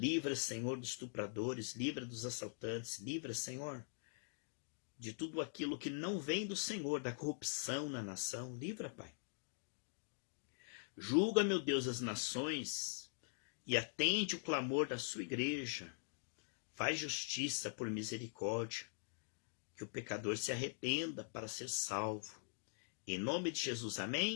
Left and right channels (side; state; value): right; silent; digital silence